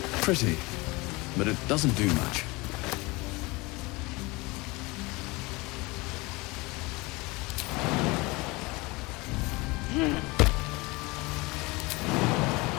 Pretty, but it doesn't do much.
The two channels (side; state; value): right; quieter; 24.1 dB